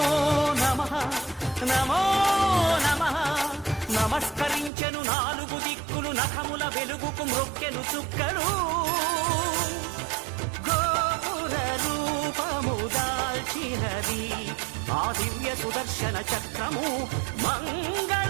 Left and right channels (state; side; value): drops out; left; at 4.7 s